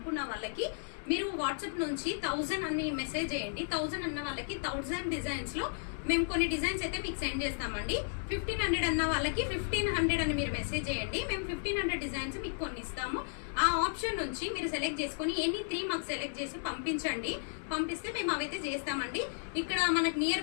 వాళ్ళకి మీరు వాట్సాప్ నుంచి 1000 అని మెసేజ్ చేయండి. 1000 అన్న వాళ్ళకి 1000 డిజైన్స్ లో మేము కొన్ని డిజైన్స్ అయితే మీకు సెండ్ చేస్తామండి. 1500 అన్న వాళ్ళకి 1500 అని మీరు మెసేజ్ చేయండి. మేము 1500 డిజైన్స్ మీకు కొన్ని ఇస్తాము. ఆ ఆప్షన్ నుంచి మీరు సెలెక్ట్ చేసుకుని ఎనీ 3 మాకు సెలెక్ట్ చేసి పంపించండి. పంపిస్తే మేము అవైతే చేస్తామండి. ఇక్కడ మనకు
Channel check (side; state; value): right; silent; digital silence